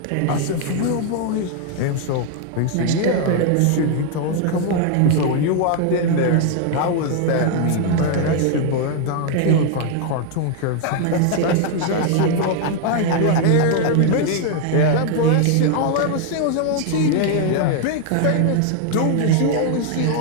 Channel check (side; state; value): both; different; correlation 0.00